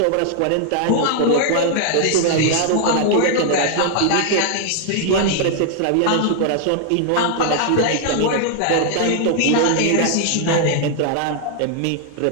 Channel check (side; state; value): both; different; correlation -0.01